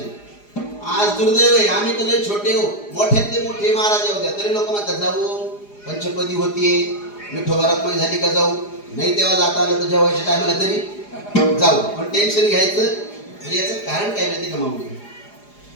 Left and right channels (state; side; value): late; right; 4.9 ms